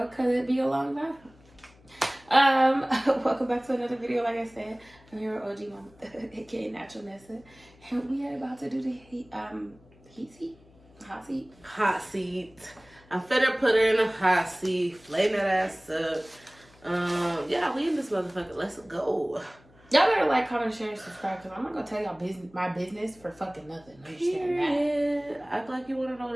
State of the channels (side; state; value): left; noise; hum, 27 dB below the sound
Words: because it'd be a long time. Welcome back to another video. Like I said, I'm here with OGMamaThug, aka Natural Nessa, and we are about to do the hot seat. I'm finna put her in a hot seat, flame that ass up. Yeah, we in this motherfucker. Let's go. Y'all better like, comment, share, and subscribe, because I'm not gonna tell y'all my business for fucking nothing. Understand that? Act like you wanna know